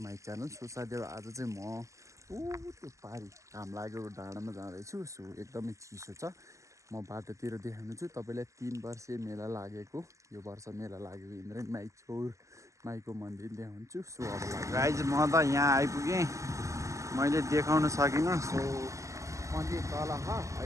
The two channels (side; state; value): left; late; 0.15 ms